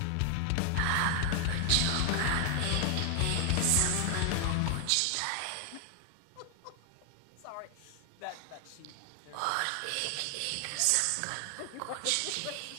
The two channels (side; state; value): both; different; correlation 0.00